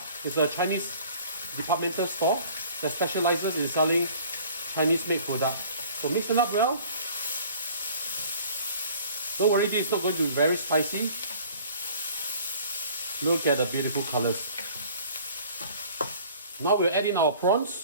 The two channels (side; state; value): both; inverted; correlation -0.50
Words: It's a Chinese departmental store that specializes in selling Chinese made products. So mix it up well. Don't worry, this is not going to be very spicy. Look at the beautiful colors. Now we'll add in our